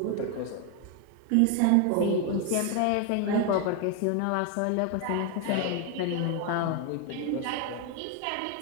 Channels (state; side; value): different; both; correlation 0.01